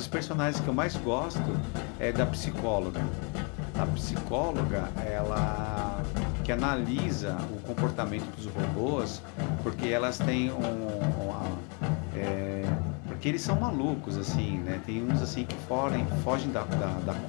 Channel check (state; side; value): quieter; right; 35.3 dB